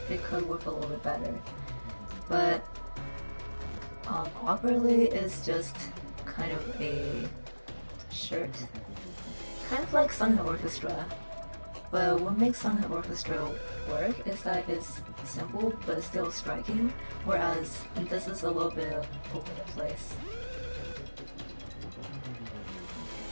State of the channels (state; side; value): inverted; both; correlation -1.00